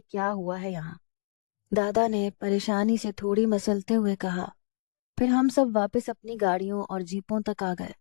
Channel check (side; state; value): right; silent; digital silence